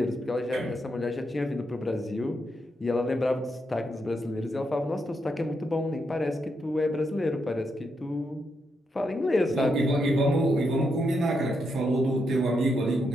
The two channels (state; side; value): normal; both; correlation 0.81